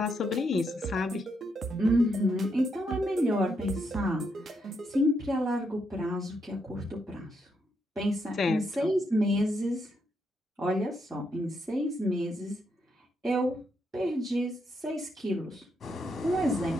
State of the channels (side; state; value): both; normal; correlation 0.79